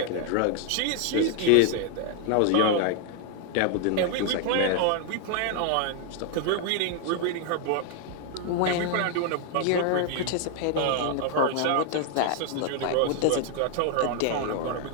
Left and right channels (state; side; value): different; both; correlation 0.00